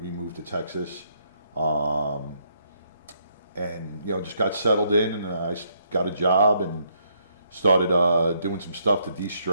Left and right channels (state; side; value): inverted; both; correlation -0.73